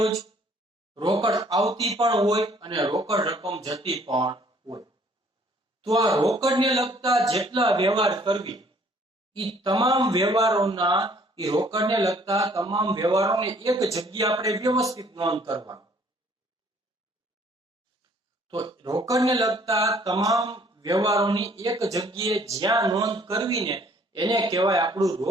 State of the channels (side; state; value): both; normal; correlation 0.59